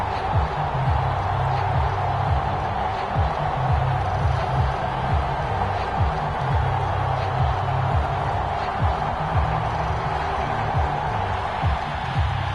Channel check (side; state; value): both; identical; correlation 1.00